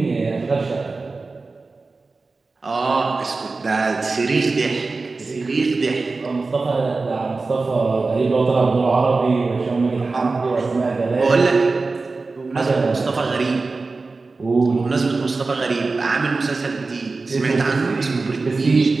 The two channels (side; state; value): left; quieter; 3.8 dB